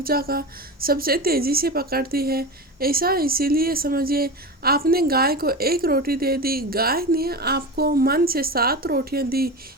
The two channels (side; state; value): both; normal; correlation 0.25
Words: का सबसे तेजी से पकड़ती है। ऐसा इसीलिए समझिए आपने गाय को 1 रोटी दे दी, गाय ने आपको मन से 7 रोटियां दी।